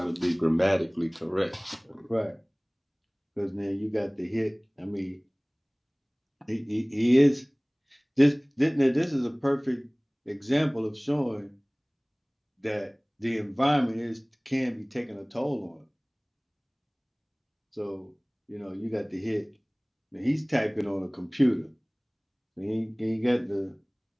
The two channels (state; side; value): identical; both; correlation 1.00